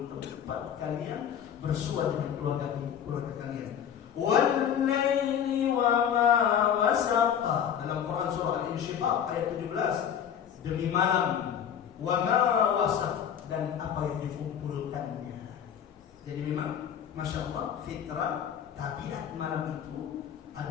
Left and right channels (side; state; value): right; quieter; 8.8 dB